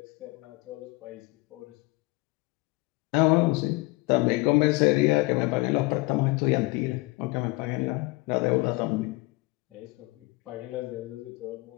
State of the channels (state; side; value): quieter; right; 23.6 dB